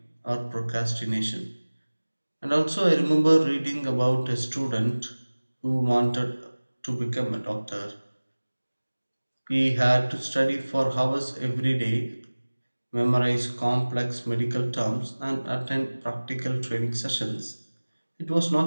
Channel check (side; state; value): both; inverted; correlation -1.00